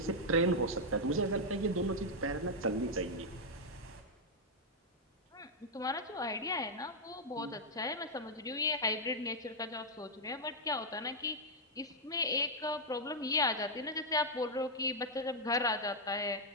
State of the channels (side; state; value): both; normal; correlation -0.03